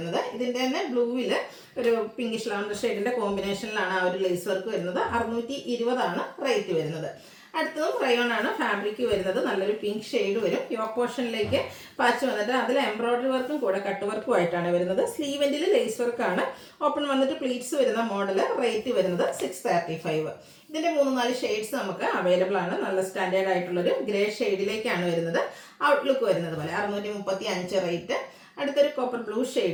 ഇതിൻ്റെ തന്നെ ബ്ലൂവിൽ ഒരു പിങ്കിഷ് ലാവൻഡർ ഷെയ്ഡിൻ്റെ കോമ്പിനേഷനിലാണ് ആ ഒരു ലേസ് വർക്ക് വരുന്നത്. 620 ആണ് റേറ്റ് വരുന്നത്. അടുത്തതും റയോൺ ആണ് ഫാബ്രിക് വരുന്നത്. നല്ലൊരു പിങ്ക് ഷെയ്ഡ് വരും. യോക്ക് പോർഷനിലേക്ക് പാച്ച് വന്നിട്ട് അതിൽ എംബ്രോയിഡറി വർക്കും കൂടെ കട്ട് വർക്കും ആയിട്ടാണ് വരുന്നത്. സ്ലീവെൻറ്റിൽ ലേസ് വർക്കാണ്. ഓപ്പൺ വന്നിട്ട് പ്ലീറ്റ്സ് വരുന്ന മോഡൽ. റേറ്റ് വരുന്നത് 635. ഇതിൻ്റെ 3-4 ഷെയ്ഡ്സ് നമുക്ക് അവൈലബിൾ ആണ്. നല്ല സ്റ്റാൻഡേർഡ് ആയിട്ടുള്ളൊരു ഗ്രേ ഷെയ്ഡിലേക്കാണ് വരുന്നത്. ഔട്ട്ലുക്ക് വരുന്നത് പോലെ 635 റേറ്റ്. അടുത്തൊരു copper blue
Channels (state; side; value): identical; both; correlation 1.00